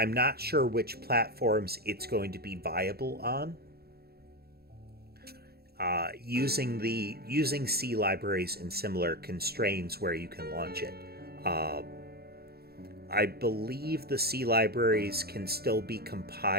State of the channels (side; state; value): left; late; 0.46 ms